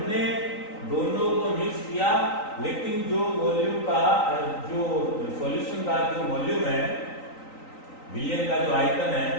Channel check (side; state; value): right; late; 3.9 ms